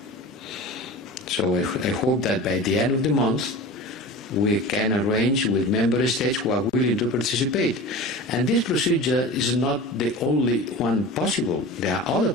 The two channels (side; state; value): both; normal; correlation 0.33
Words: So I hope that by the end of the month, we can arrange with member states who are willing to participate. And this procedure is not the only one possible. There are other